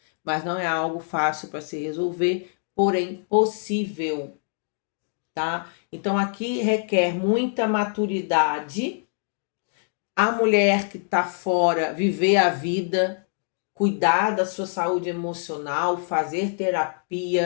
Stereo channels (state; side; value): silent; right; digital silence